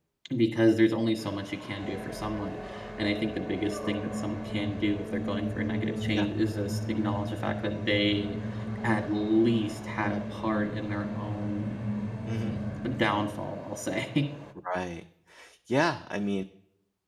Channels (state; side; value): identical; both; correlation 1.00